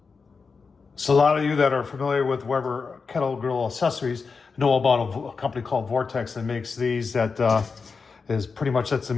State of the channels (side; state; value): right; quieter; 4.9 dB